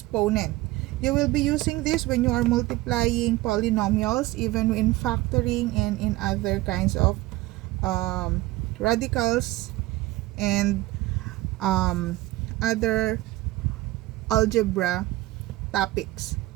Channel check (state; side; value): quieter; left; 18.4 dB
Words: You will be using this when you are multiplying polynomials, even in factoring and in other kinds of radicals and other algebra topics.